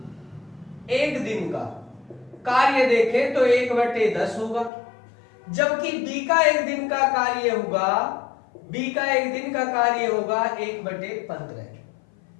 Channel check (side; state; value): right; drops out; at 4.7 s